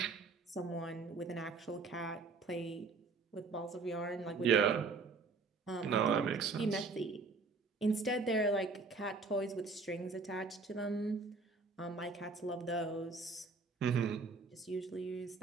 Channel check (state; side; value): quieter; left; 4.2 dB